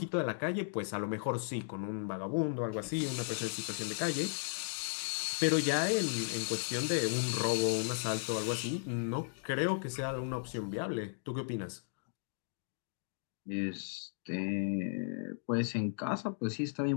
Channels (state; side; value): silent; right; digital silence